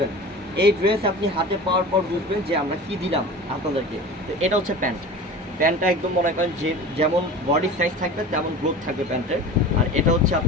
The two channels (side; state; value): both; normal; correlation 0.36